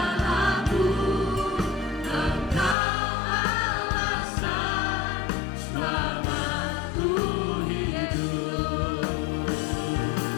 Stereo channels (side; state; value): right; drops out; at 2.8 s